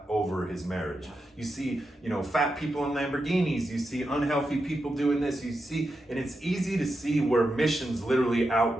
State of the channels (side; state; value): both; normal; correlation 0.88